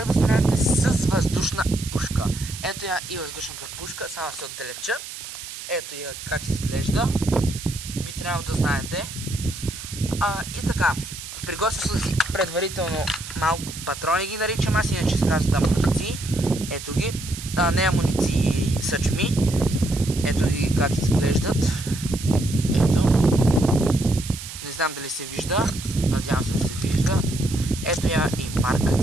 да стреляте с въздушна пушка. Ето я и въздушната пушка, само се отдалеча. Ето я как изглежда. Би трябвало да знаете. И така, приготвил съм си предварително малко патрони ги наричам, аз иначе се казват амуниции. Ето ги, не амуниции, съчми. Ето ги как изглеждат. Ето. Не знам дали се вижда. Надявам се да се вижда. Ето я и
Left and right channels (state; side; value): noise; right; hiss, 11 dB below the sound